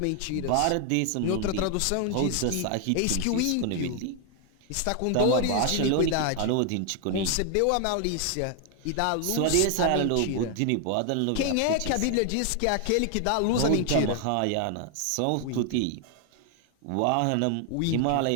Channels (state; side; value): different; both; correlation 0.00